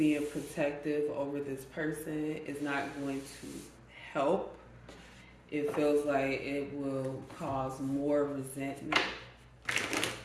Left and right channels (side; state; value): both; identical; correlation 1.00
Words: protective over this person is not going to help. It feels like it will cause more resentment.